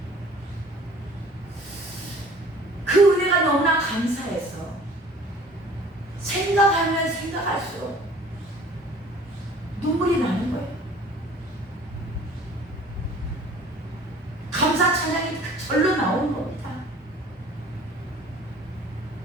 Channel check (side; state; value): both; normal; correlation 0.49